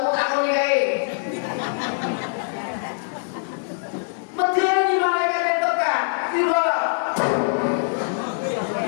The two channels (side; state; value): right; silent; 63 dB below the other